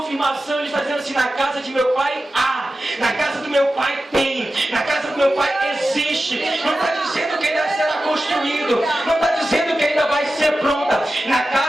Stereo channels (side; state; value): both; normal; correlation 0.93